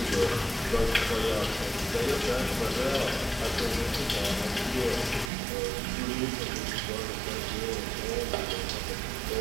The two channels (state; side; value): drops out; left; at 5.3 s